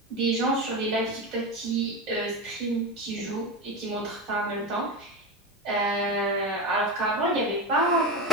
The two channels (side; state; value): both; normal; correlation 0.18